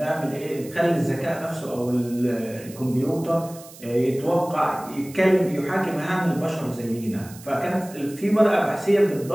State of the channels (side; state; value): right; noise; hiss, 19 dB below the sound